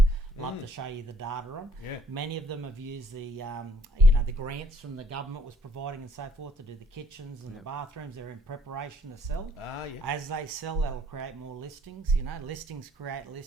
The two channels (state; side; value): normal; both; correlation 0.62